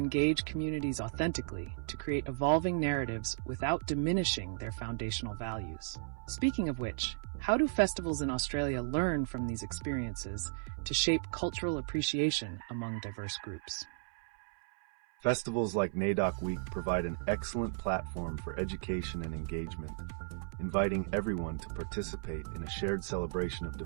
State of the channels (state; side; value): silent; left; 54 dB below the other